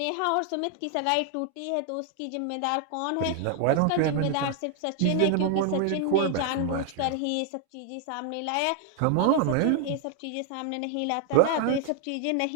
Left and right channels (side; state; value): both; different; correlation 0.00